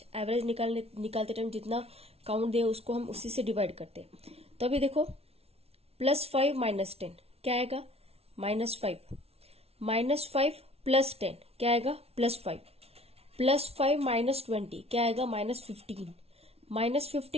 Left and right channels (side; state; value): left; late; 0.30 ms